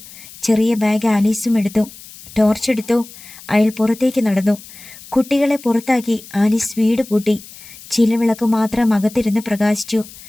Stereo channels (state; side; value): noise; left; hiss, 18 dB below the sound